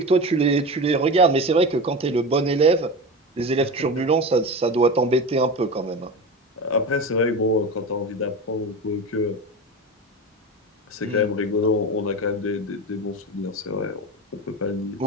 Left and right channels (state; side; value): normal; both; correlation 0.26